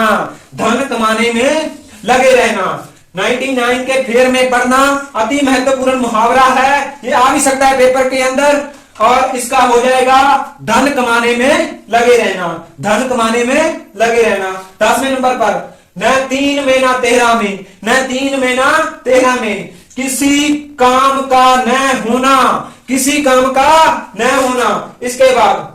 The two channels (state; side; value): identical; both; correlation 1.00